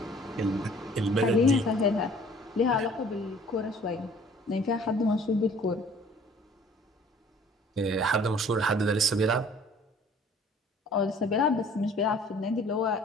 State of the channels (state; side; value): normal; both; correlation 0.53